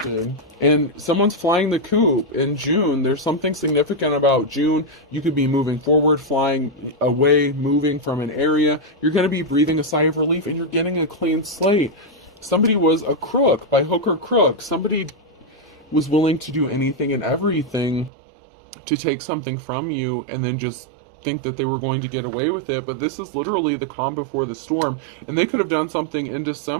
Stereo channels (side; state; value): left; drops out; at 18.1 s